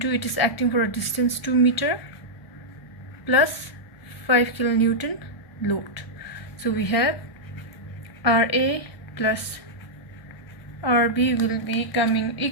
it is acting for a distance 2 meter plus 5 kilonewton load. So we have RA plus RB will be coming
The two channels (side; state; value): right; late; 1.0 ms